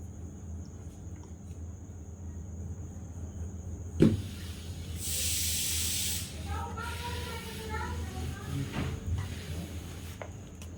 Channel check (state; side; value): identical; both; correlation 1.00